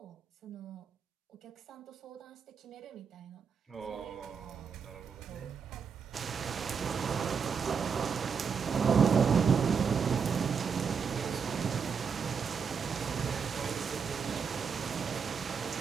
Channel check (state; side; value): quieter; left; 6.2 dB